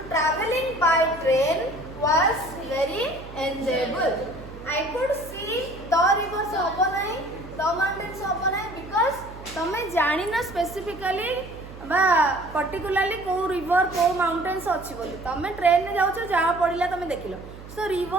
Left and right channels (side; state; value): right; noise; hum, 15 dB below the sound